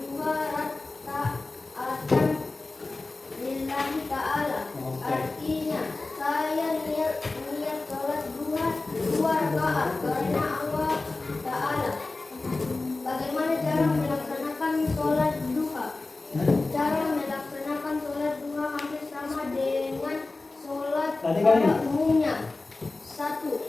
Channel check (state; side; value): quieter; right; 3.4 dB